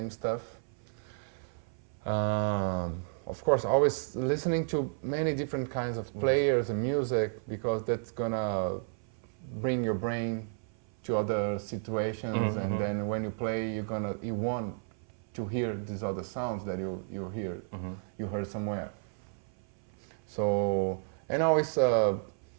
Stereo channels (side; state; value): left; silent; 56 dB below the other